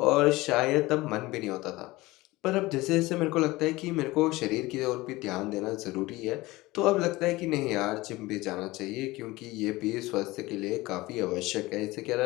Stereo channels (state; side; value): quieter; right; 20.0 dB